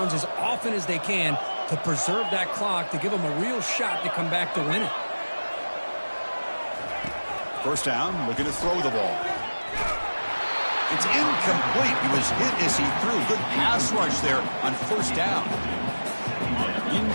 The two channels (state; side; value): inverted; both; correlation -1.00